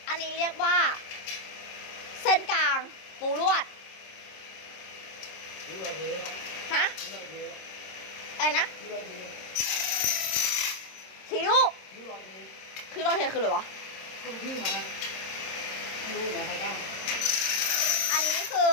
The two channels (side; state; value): right; late; 26 ms